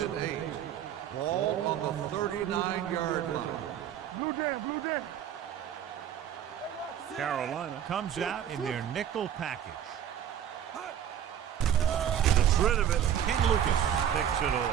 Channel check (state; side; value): quieter; left; 9.8 dB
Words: and 8. Ball on the 39-yard line. Blue down. Carolina comes out in their nickel package. Gets rid of it. Ken Lucas picks it